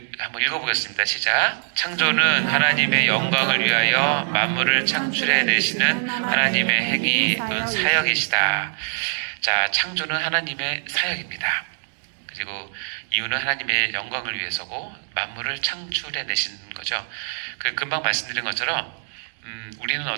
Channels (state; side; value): silent; left; digital silence